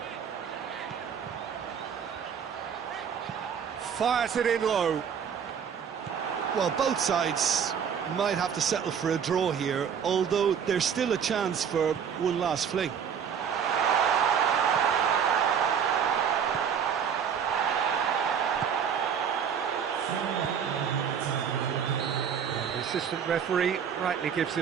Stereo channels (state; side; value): quieter; left; 7.6 dB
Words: Fires it in low. Well, both sides might have to settle for a draw here, although there's still a chance for one last fling. And the assistant referee rightly gives